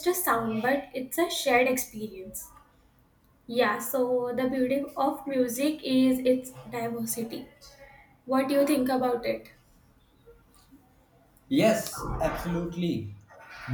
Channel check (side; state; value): both; identical; correlation 1.00